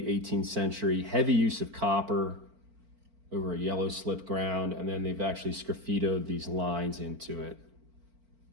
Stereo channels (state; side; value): late; left; 4.5 ms